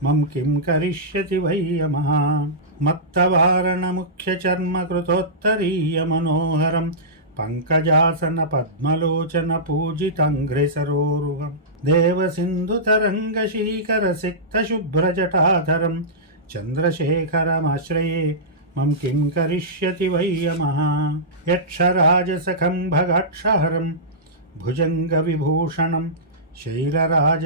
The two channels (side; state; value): both; normal; correlation -0.16